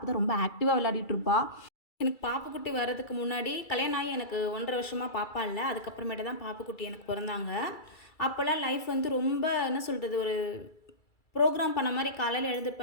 தான் ரொம்ப ஆக்டிவாக விளையாடிட்டு இருப்பா. எனக்கு பாப்புக்குட்டி வர்றதுக்கு முன்னாடி கல்யாணம் ஆகி எனக்கு 1.5 வருஷமா பாப்பா இல்ல. அதுக்கப்புறமேட்டு தான் பாப்புக்குட்டி எனக்கு பொறந்தாங்க. அப்போலாம் லைஃப் வந்து ரொம்ப என்ன சொல்றது, ஒரு ப்ரோக்ராம் பண்ண மாரி காலையில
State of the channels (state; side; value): late; right; 2.3 ms